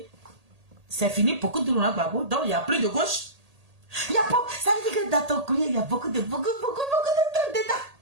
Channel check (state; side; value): late; left; 1.8 ms